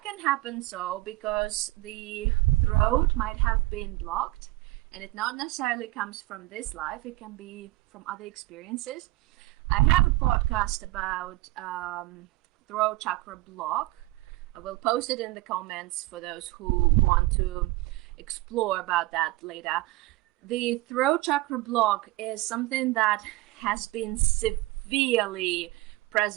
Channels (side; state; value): left; quieter; 20.0 dB